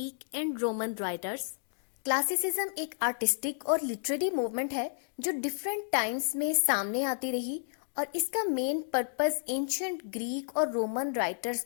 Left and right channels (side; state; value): right; silent; digital silence